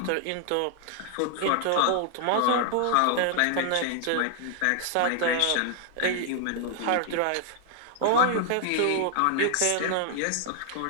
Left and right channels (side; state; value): both; different; correlation 0.00